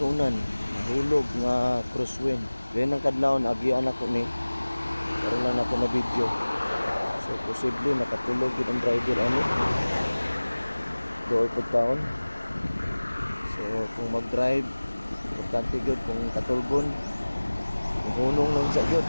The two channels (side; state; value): both; inverted; correlation -1.00